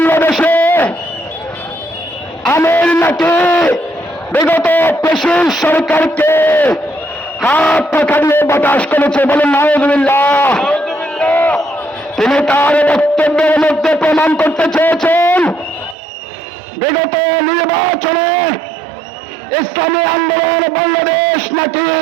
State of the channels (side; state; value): left; drops out; at 16.0 s